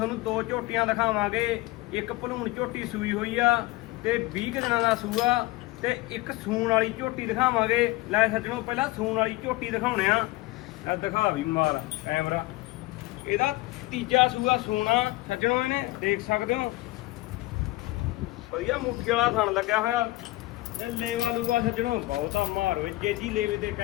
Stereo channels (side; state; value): right; quieter; 19.7 dB